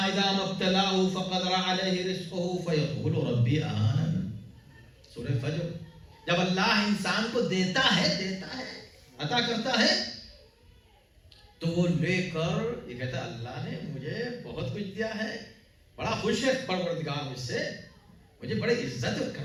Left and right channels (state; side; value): identical; both; correlation 1.00